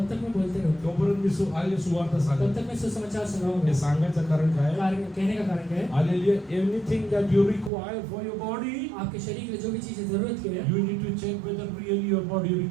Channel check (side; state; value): left; drops out; at 7.7 s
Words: तक मैं बोलते रहूँ तोपर्यंत मी सुवार्ता तब सांगत तक मैं सुसमाचार हे सुनाऊंगा सांगायचं कारण काय कहने का कारण क्या है hallelujah anything that you require for your body आपके शरीर के लिए जो भी चीजें जरूरत की है you need to check whether really your body